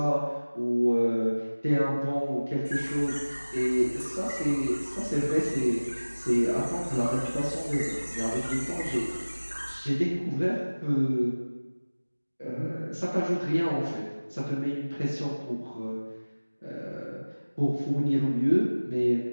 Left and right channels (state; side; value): inverted; both; correlation -1.00